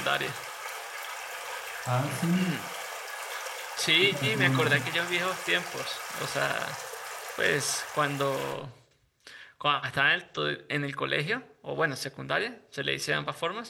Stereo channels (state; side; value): identical; both; correlation 1.00